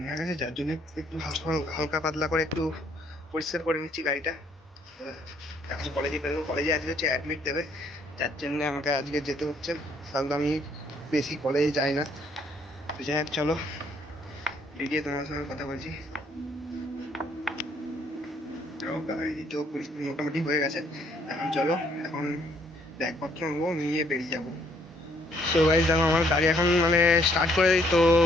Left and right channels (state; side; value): normal; both; correlation 0.66